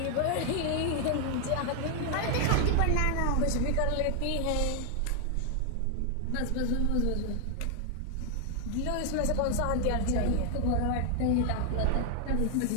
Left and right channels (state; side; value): different; both; correlation 0.00